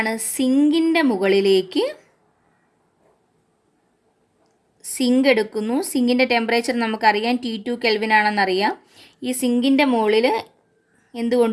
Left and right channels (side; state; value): both; identical; correlation 1.00